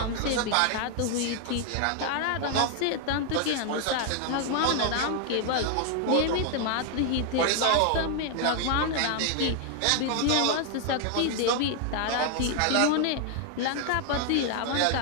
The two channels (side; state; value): both; different; correlation 0.00